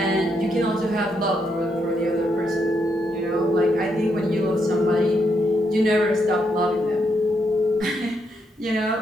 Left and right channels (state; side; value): normal; both; correlation 0.78